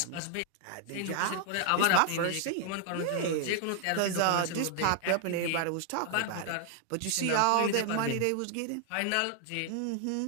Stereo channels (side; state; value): both; different; correlation 0.00